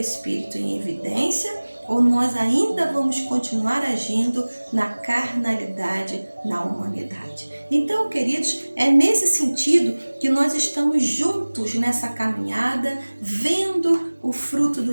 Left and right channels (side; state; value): both; inverted; correlation -1.00